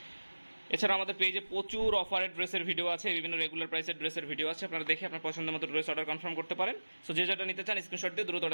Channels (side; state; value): both; inverted; correlation -1.00